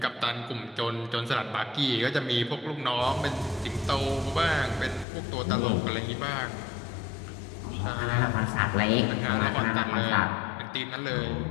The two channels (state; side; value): drops out; right; at 5.1 s